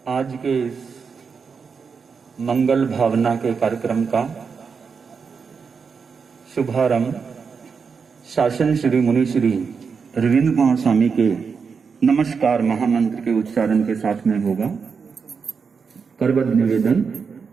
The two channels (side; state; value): left; quieter; 5.7 dB